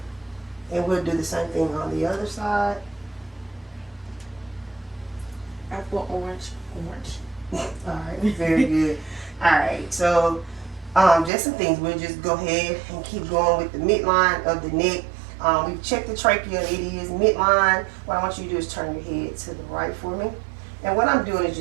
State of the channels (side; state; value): left; drops out; at 11.3 s